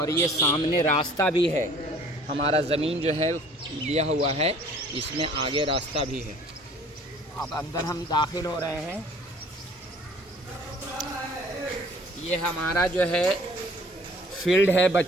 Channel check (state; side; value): normal; both; correlation 0.52